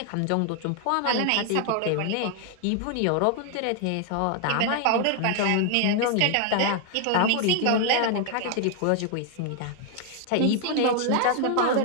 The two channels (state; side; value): different; both; correlation 0.00